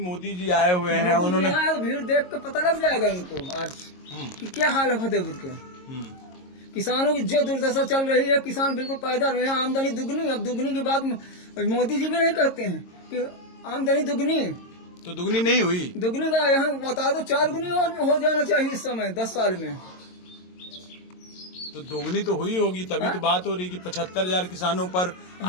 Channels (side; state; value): right; late; 22 ms